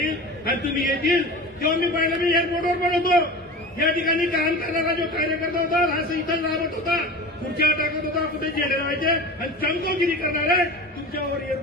आणि तुम्ही येतील. तेव्हा मी पाहिलं, मी एअरपोर्टवर पण होतो. या ठिकाणी काम करणारा जो कार्यकर्ता होता असं इथं राबत होता, खुर्च्या टाकत होता, कुठे जेल व्हायचे आणि चमकोगिरी करणारे तुमच्यावर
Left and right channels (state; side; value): normal; both; correlation 0.33